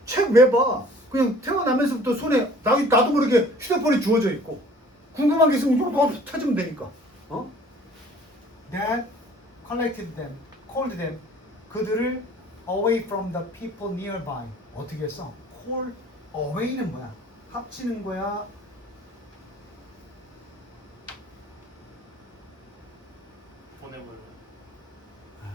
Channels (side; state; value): both; normal; correlation 0.51